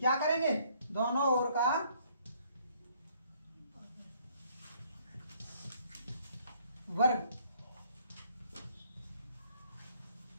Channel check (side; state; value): both; inverted; correlation -0.64